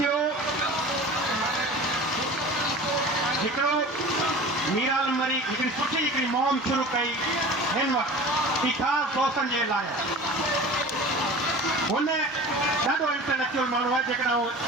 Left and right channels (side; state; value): both; normal; correlation 0.38